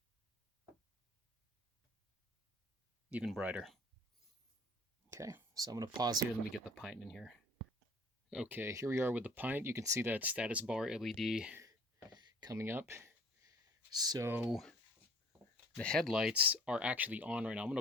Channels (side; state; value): both; normal; correlation 0.51